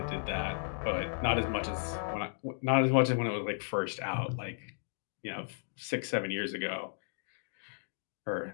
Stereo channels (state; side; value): silent; right; digital silence